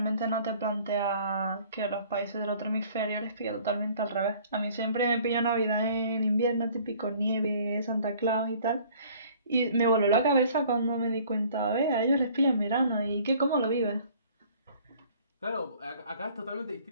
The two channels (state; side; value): inverted; both; correlation -0.53